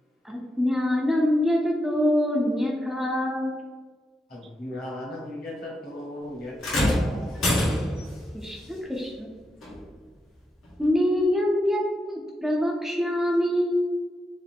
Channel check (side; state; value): both; normal; correlation 0.84